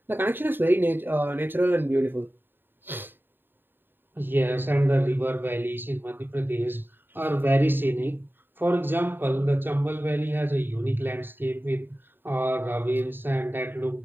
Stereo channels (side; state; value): left; late; 0.096 ms